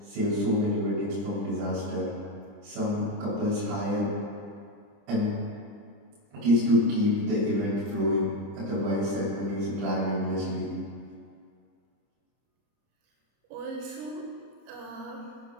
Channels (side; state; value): left; late; 30 ms